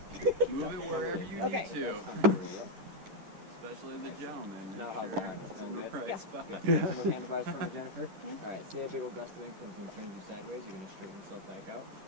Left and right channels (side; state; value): left; late; 11 ms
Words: there. Move it wherever you Okay. need to. That's comfortable, yep. Especially the gentleman. Now how's the harness? There's Going no good? price Yeah. spot. Good. Hands on those handlebars for me, Jennifer. Okay. Alright, see a big old gust of wind comes and turns you sideways. You're gonna straighten yourself back out.